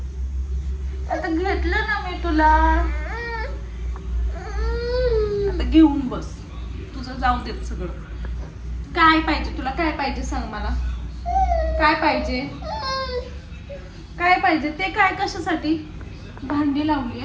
आता घेतलं ना मी तुला, आता घेऊन बस. तुझं जाऊ देत सगळं. काय पाहिजे तुला? काय पाहिजे सांग मला. काय पाहिजे? काय पाहिजे ते? काय कशासाठी? भांडी लावली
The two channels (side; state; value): both; identical; correlation 1.00